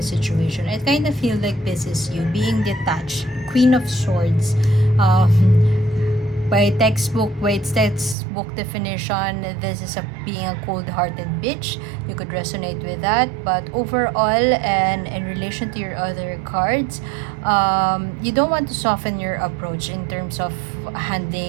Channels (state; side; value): drops out; left; at 8.2 s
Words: situation. I kind of feel like this is you being detached. Queen of Swords. By its textbook definition, this is being a cold-hearted bitch. You could resonate with that, but overall, and in relation to your other cards, you don't want to soften your approach in terms of